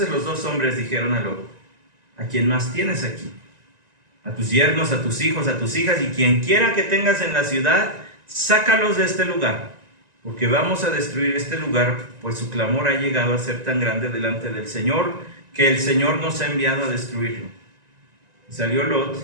los dos hombres dijeron a Lot: ¿A quién más tienes aquí? A tus yernos, a tus hijos, a tus hijas, y quien quiera que tengas en la ciudad, sácalos de este lugar, porque vamos a destruir este lugar, pues su clamor ha llegado a ser tan grande delante del Señor, que el Señor nos ha enviado a destruirlo. Y salió Lot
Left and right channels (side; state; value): left; late; 1.9 ms